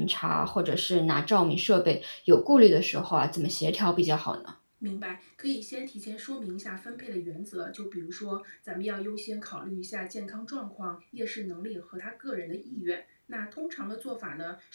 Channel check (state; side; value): inverted; both; correlation -1.00